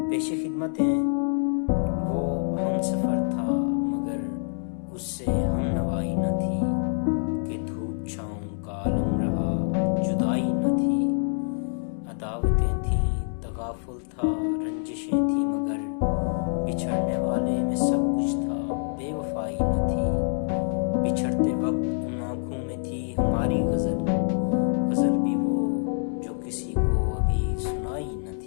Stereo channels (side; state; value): right; silent; digital silence